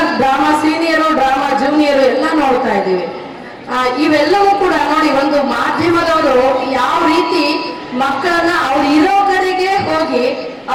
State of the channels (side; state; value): both; identical; correlation 1.00